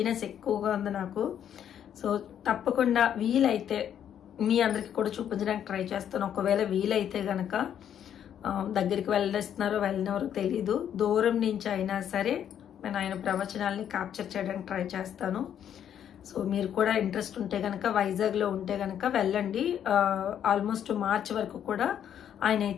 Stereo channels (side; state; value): right; quieter; 9.5 dB